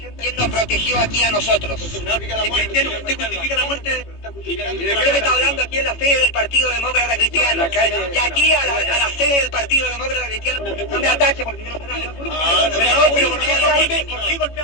¿Quién nos protegió aquí a nosotros? Cristiano, ¿usted justifica la muerte? Usted me está hablando aquí en la sede del Partido Demócrata Cristiano. Y aquí a la sede del Partido Demócrata Cristiano. No me ataque porque yo no sé nada. Pero ¿por qué golpea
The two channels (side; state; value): right; late; 18 ms